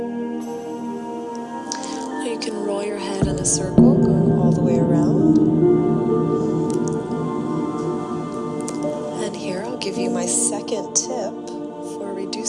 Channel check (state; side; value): identical; both; correlation 1.00